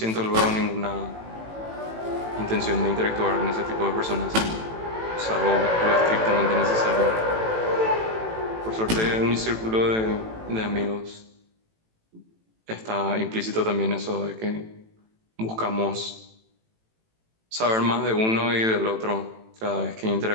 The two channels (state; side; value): late; left; 18 ms